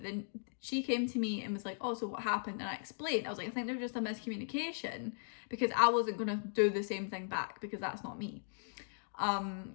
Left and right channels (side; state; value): right; silent; digital silence